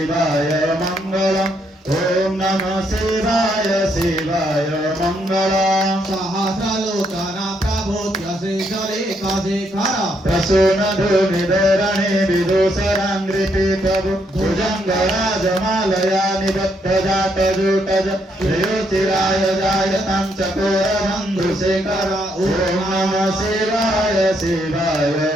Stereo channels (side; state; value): both; normal; correlation 0.75